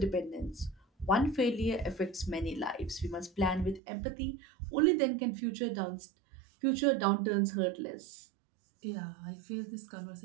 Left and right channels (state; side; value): drops out; left; at 3.8 s